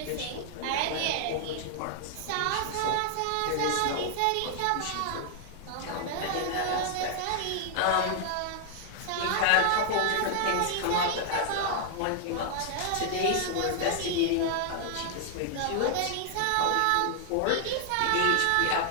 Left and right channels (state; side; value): different; both; correlation 0.00